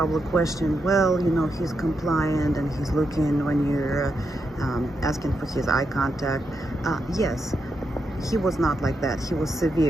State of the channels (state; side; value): normal; both; correlation 0.84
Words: question, well, you know, he's compliant and he's looking when you're asking for his eye contact. Yes, he was not like that. He was